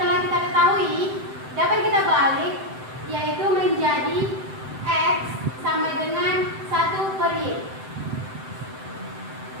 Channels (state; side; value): late; left; 7.8 ms